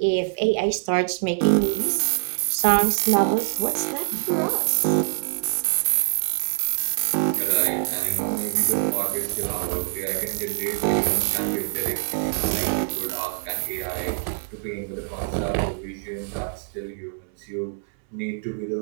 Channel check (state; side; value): silent; left; 62 dB below the other